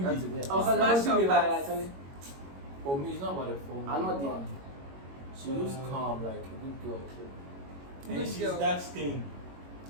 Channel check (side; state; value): left; late; 22 ms